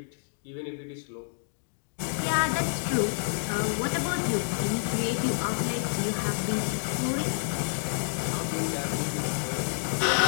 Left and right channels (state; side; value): silent; right; digital silence